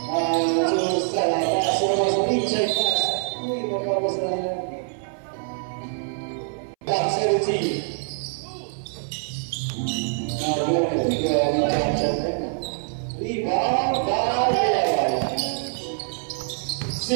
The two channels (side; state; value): left; silent; 62 dB below the other